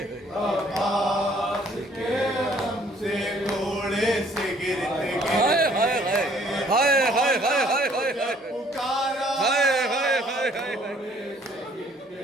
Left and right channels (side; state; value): both; normal; correlation 0.60